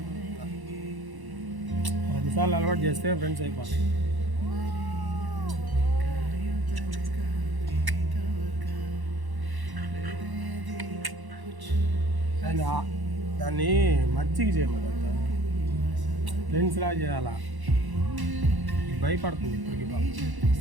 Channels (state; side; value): late; left; 1.1 ms